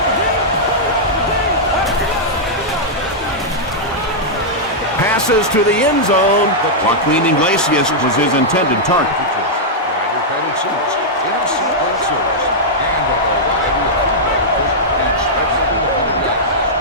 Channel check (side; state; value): both; normal; correlation -0.08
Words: Passes to the end zone. Joaquin Iglesias was his intended target.